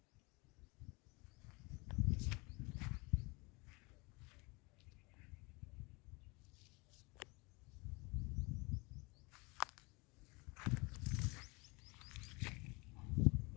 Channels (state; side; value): quieter; right; 27.4 dB